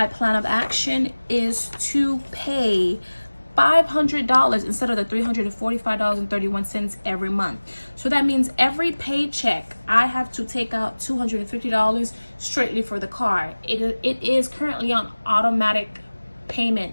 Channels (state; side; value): inverted; both; correlation -1.00